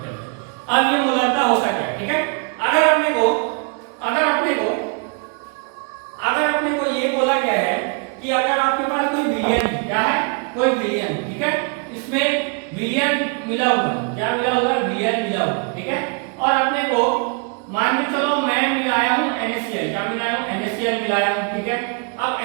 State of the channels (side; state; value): left; quieter; 34.6 dB